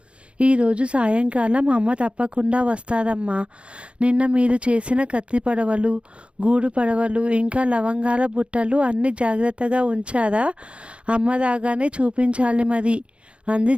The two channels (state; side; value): late; left; 0.059 ms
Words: ఈరోజు సాయంకాలం అమ్మ తప్పకుండా వస్తారమ్మా. నిన్న మీరు చేసిన కత్తి పడవలు, గూడు పడవలు, ఇంకా లవంగాల బుట్టలు అన్నీ జాగ్రత్తగా ఉంచారా? అమ్మ రాగానే చూపించాలి మరి అంది